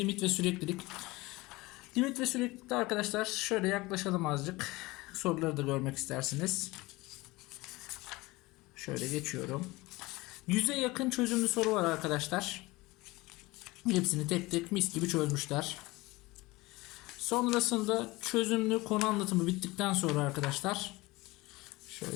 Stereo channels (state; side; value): quieter; right; 21.4 dB